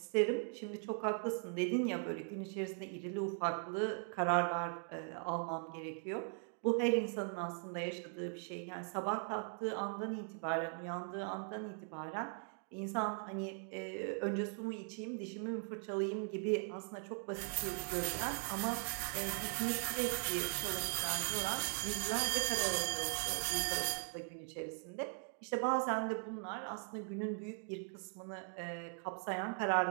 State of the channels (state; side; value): silent; left; 51 dB below the other